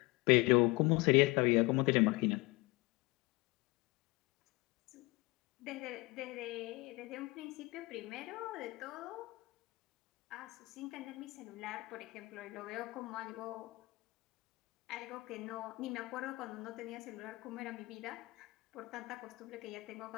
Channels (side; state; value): right; quieter; 23.4 dB